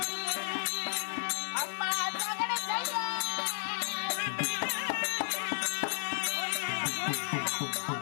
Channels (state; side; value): silent; right; 56 dB below the other